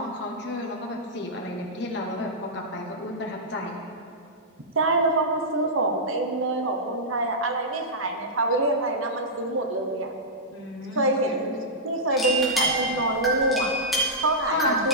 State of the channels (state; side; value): normal; both; correlation -0.11